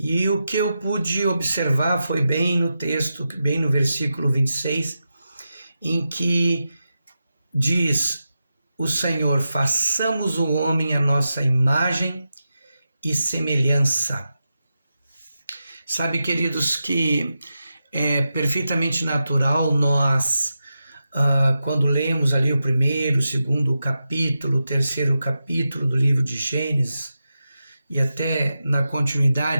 o que eu pude observar foi bem no texto, bem no versículo 26, em que diz o Senhor: façamos o homem à nossa imagem e semelhança. Sabe, queridos, que é perfeitamente natural nós, quando lemos ali o primeiro, o segundo capítulo, o terceiro capítulo do livro de Gênesis, e até na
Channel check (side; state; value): both; inverted; correlation -0.90